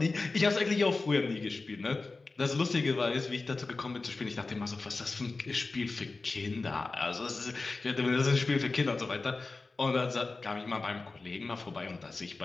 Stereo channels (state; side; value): quieter; right; 3.7 dB